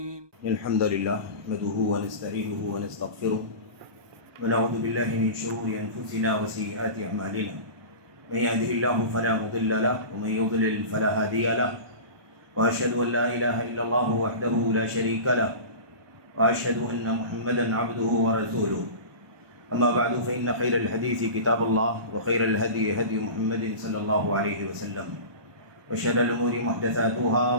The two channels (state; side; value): late; left; 1.2 ms